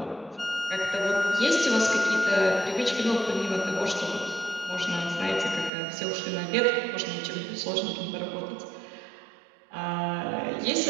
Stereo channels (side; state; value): left; drops out; at 5.7 s